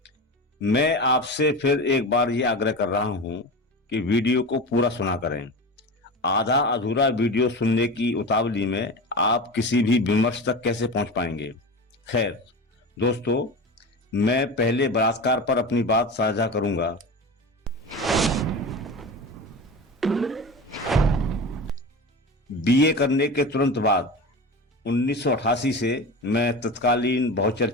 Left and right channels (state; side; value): normal; both; correlation 0.28